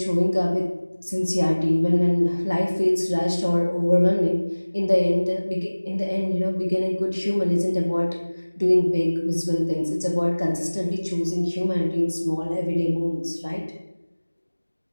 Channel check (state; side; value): inverted; both; correlation -1.00